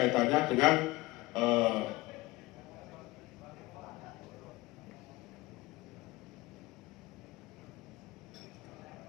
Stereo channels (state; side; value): quieter; right; 20.1 dB